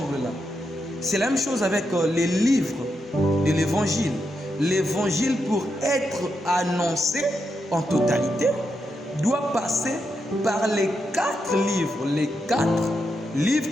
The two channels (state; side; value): normal; both; correlation 0.84